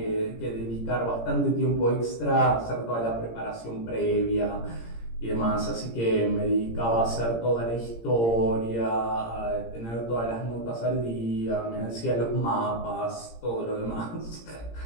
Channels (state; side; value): late; right; 17 ms